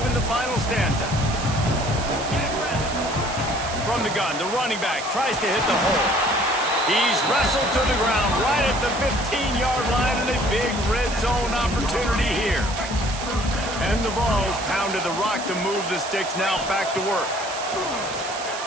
the final stanza. From the gun, the running back tries to hit the hole. He's wrestled to the ground right at the 15-yard line, and a big red zone opportunity here. And the Vols pounded the rock to move the sticks, now back to work.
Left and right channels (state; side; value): noise; right; hiss, 9 dB below the sound